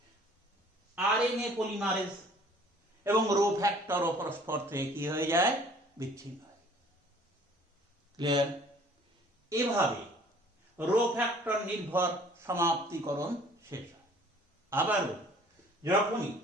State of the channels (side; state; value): both; normal; correlation 0.53